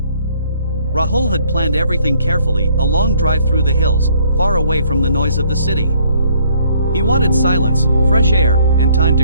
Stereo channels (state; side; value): inverted; both; correlation -0.63